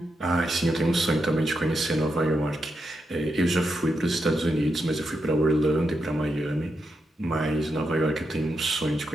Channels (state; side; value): normal; both; correlation 0.84